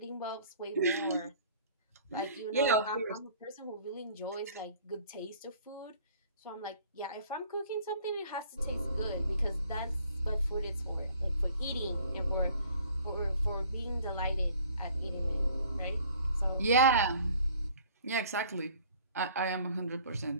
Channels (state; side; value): inverted; both; correlation -0.54